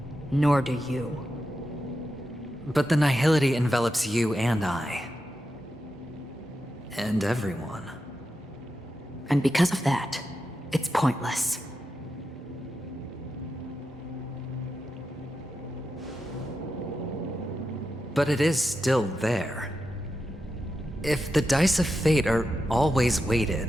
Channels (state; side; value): normal; both; correlation 0.88